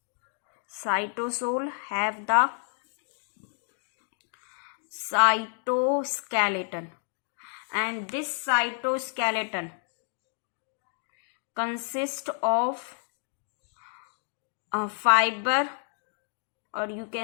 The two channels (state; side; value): silent; right; 58 dB below the other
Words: Cytosol have the cytoskeleton, and this cytoskeleton consists of fiber, or you